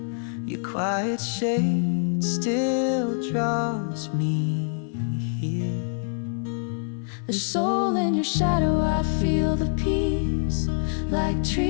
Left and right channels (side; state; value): right; silent; 62 dB below the other